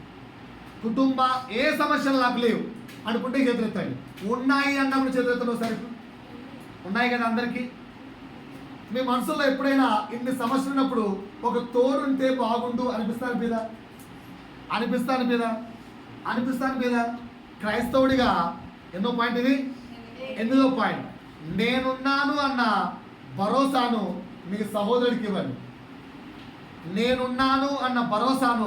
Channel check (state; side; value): identical; both; correlation 1.00